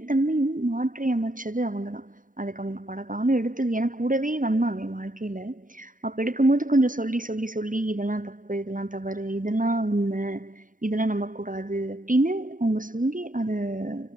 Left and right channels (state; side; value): late; left; 0.39 ms